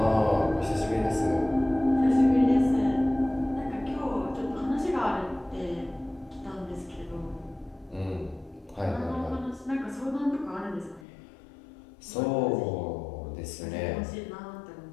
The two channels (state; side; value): drops out; right; at 11.1 s